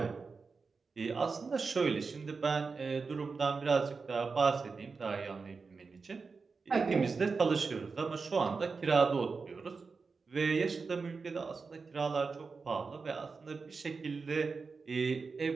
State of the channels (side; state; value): left; quieter; 4.6 dB